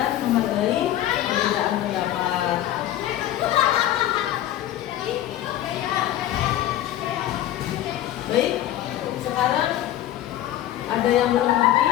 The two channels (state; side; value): quieter; right; 12.9 dB